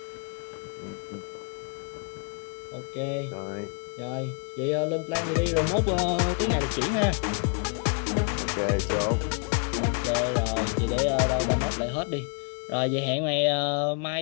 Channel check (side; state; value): right; quieter; 39.4 dB